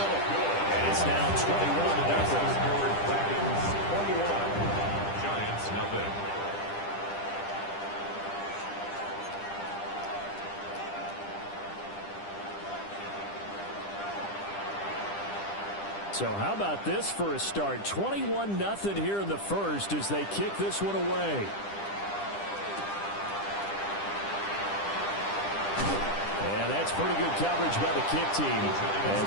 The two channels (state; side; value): late; right; 10 ms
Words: And it's now 21-0. Giants, nothing. So how about this for a start? 21-0 here in the 1st as they kick this one away. And that's pretty good coverage by the kick team,